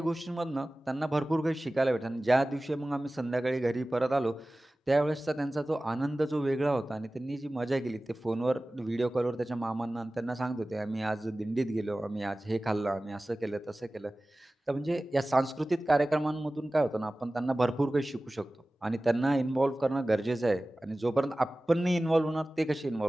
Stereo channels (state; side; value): normal; both; correlation 0.97